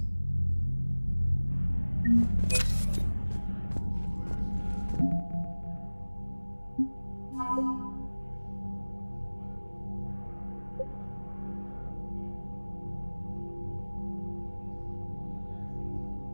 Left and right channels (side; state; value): both; inverted; correlation -1.00